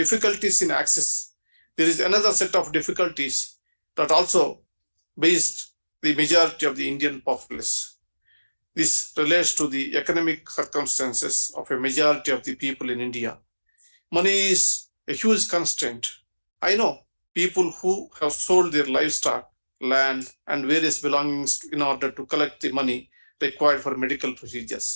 in access, there is another set of difficulties that also based the majority of the Indian populace. This relates to the economic circumstances of a majority of the people in India. Money is a huge constraint. I know people who have sold their livestock, land, and various belongings in order to collect the money required for medical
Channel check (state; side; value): inverted; both; correlation -1.00